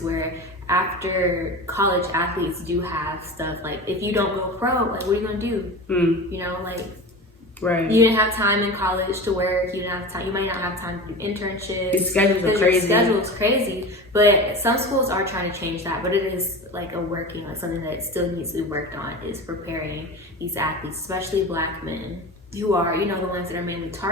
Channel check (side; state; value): both; normal; correlation 0.30